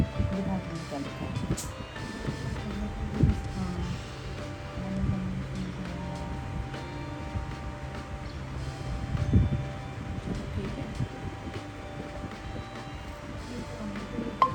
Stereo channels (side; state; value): both; identical; correlation 1.00